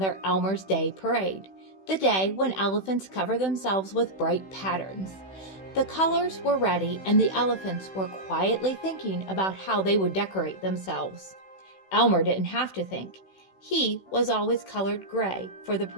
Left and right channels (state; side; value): late; right; 16 ms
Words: Elmer's Day parade, the day when elephants cover themselves with bright patterns. The colors were ready and the elephants were quietly thinking about how they would decorate themselves. Elmer didn't have to think. He was always colored gray for the